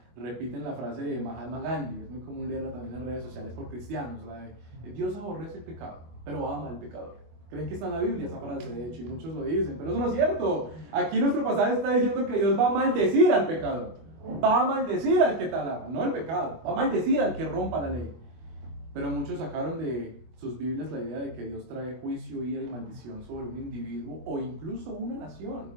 repiten la frase de Mahatma Gandhi, es muy común leerla también en las redes sociales por cristianos, la de Dios aborrece el pecado, pero ama al pecador. Creen que está en la Biblia esa frase, de hecho, y muchos lo dicen, pero eso no es cierto. Aquí nuestro pasaje está diciendo que Dios va a maldecir al pecador, va a maldecir al que talaga, no el pecado, va a maldecir al que rompa la ley. Pero muchos sacaron de sus Biblias la idea de que Dios trae juicio, ira y maldición sobre un individuo o incluso una nación,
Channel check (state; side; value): late; left; 24 ms